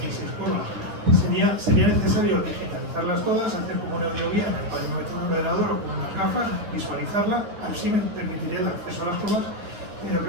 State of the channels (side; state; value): left; late; 9.6 ms